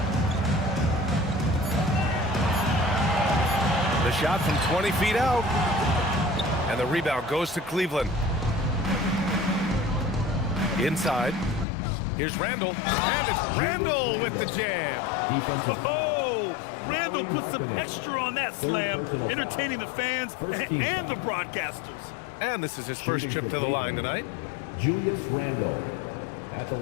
The shot from 20 feet out. And the rebound goes to Cleveland. Inside. Here's Randle. And it's Randle with the jam. Oh, Randle put some extra on that slam, entertaining the fans and the broadcasters. And this is his first trip to the line tonight. Julius Randle at the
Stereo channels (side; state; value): right; drops out; at 11.7 s